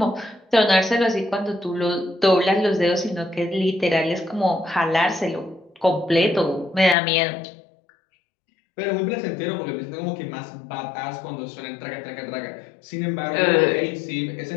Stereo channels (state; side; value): drops out; right; at 7.0 s